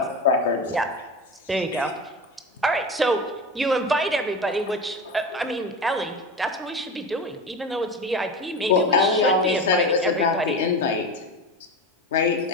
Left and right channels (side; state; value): both; normal; correlation 0.25